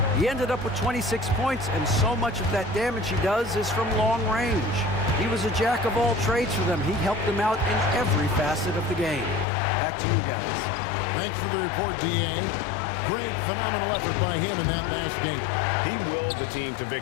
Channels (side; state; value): right; drops out; at 9.5 s